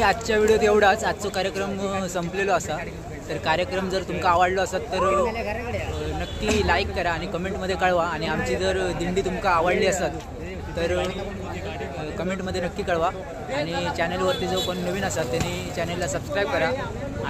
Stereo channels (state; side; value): identical; both; correlation 1.00